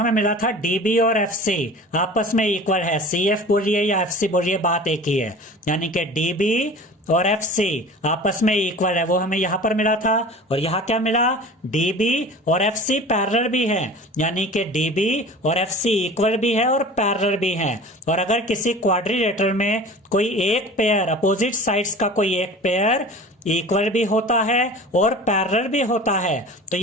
मिला था DB और FC आपस में इक्वल है, CF बोलिए या FC बोलिए बात एक ही है, यानी कि DB और FC आपस में इक्वल है, वो हमें यहां पर मिला था। और यहां क्या मिला, DB और FC पैरेलल भी है, यानी कि DB और FC इक्वल भी है और पैरेलल भी है। और अगर किसी क्वाड्रिलेटरल में कोई एक पेयर, अपोजिट साइड्स का कोई एक पेयर इक्वल भी होता है और पैरेलल भी होता है, तो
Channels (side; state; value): both; normal; correlation 0.40